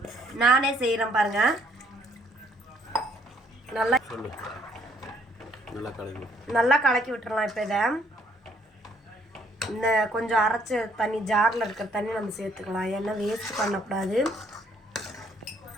நானே செய்கிறேன் பாருங்கள். நல்லா கலக்கி விட்டுறலாம். இப்போ இதை இந்த கொஞ்சம் அரைச்ச தண்ணி, ஜாரில் இருக்கிற தண்ணி நம்ம சேர்த்துக்கலாம். ஏன்னா வேஸ்ட் பண்ணக்கூடாது.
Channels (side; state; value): both; normal; correlation 0.66